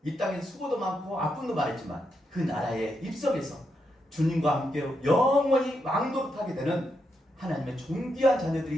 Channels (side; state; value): both; normal; correlation 0.82